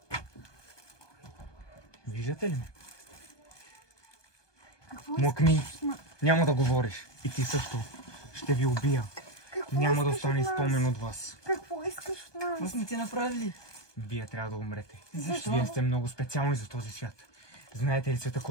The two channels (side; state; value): right; late; 1.2 ms